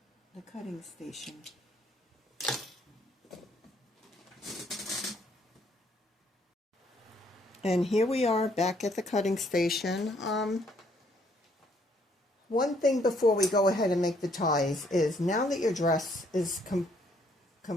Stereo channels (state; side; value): normal; both; correlation 0.67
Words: cutting station. And here we are back at the cutting station. One thing before we go ahead and make the ties is, now that your dress is